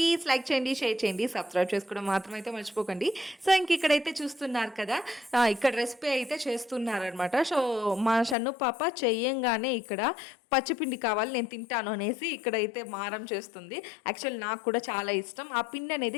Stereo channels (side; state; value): right; drops out; at 8.3 s